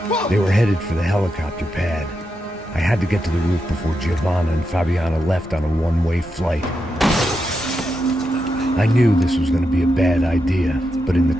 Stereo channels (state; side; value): normal; both; correlation 0.86